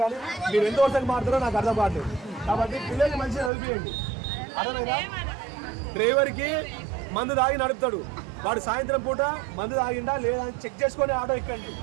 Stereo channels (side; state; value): left; drops out; at 3.5 s